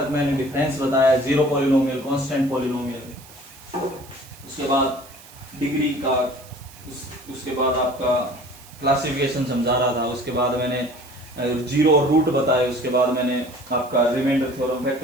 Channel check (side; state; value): right; noise; hiss, 21 dB below the sound